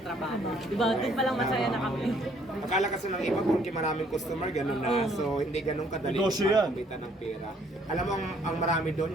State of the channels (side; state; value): both; normal; correlation 0.64